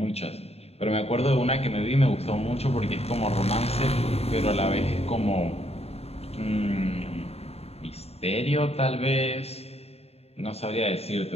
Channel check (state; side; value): late; right; 0.30 ms